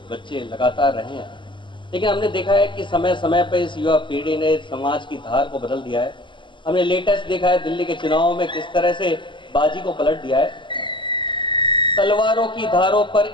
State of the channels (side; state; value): right; late; 0.24 ms